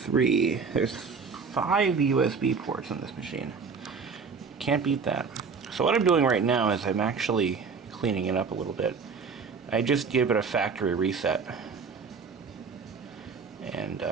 There's 5 USB ports on this machine. Can't beat that. So what I'm doing right now is I'm actually cleaning it up a little bit. I just give it a factory reset. And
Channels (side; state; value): left; quieter; 5.3 dB